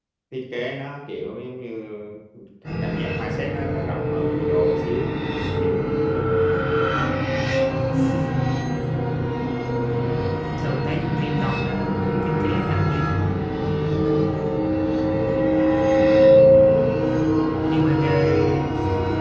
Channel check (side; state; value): both; identical; correlation 1.00